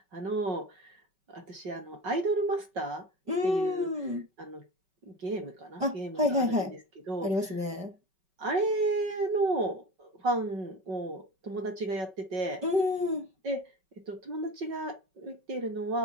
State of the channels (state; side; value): late; left; 5.3 ms